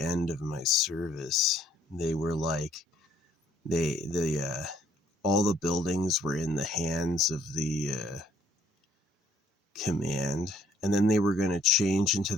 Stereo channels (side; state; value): both; normal; correlation 0.64